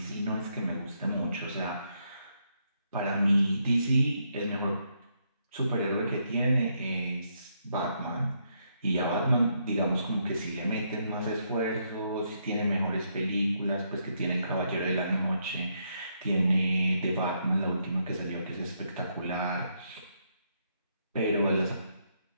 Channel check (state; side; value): inverted; both; correlation -0.76